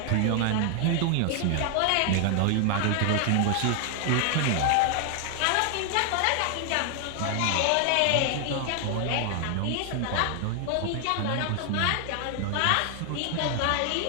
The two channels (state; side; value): different; both; correlation 0.00